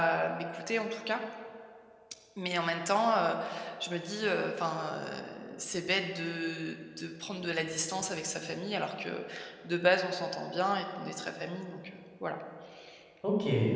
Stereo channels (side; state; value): both; identical; correlation 1.00